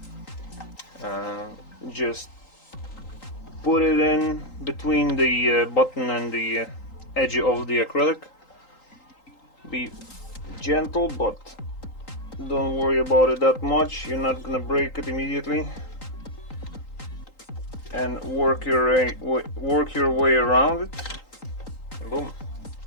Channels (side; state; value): right; late; 3.8 ms